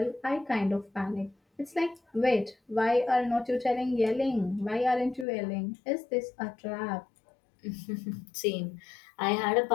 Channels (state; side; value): drops out; right; at 5.2 s